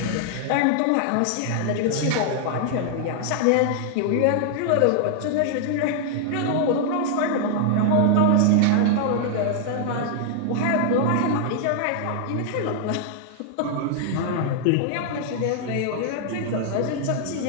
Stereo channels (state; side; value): different; both; correlation 0.00